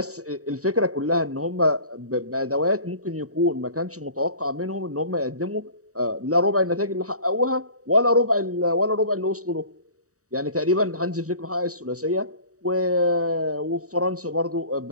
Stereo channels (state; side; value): late; left; 0.66 ms